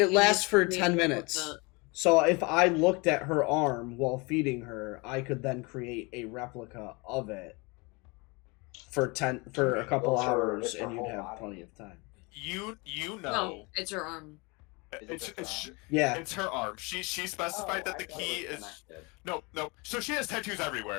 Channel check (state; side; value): quieter; right; 27.9 dB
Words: you lasts just for made 10 up minutes. the- So if I looked at her arm while feeding her, I could then create a replica of it for a couple Well, sure, hours, it's her and you'd whole have body. plenty of time. You know. No, it's her arm. Is it just her arm? Yeah. It's her arm. She specified that I the thought key it was is connected. no. So she has tattoos